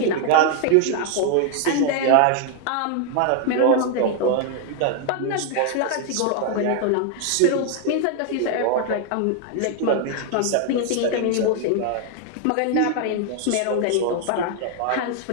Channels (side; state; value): both; different; correlation 0.00